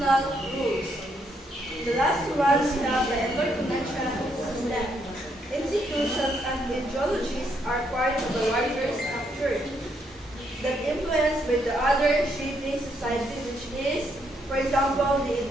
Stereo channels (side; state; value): both; normal; correlation 0.75